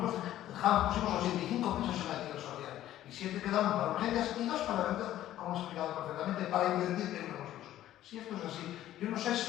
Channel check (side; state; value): right; quieter; 13.1 dB